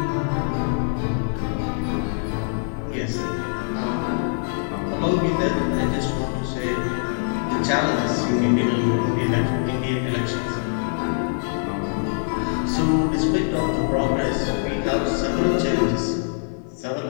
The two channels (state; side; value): silent; right; 56 dB below the other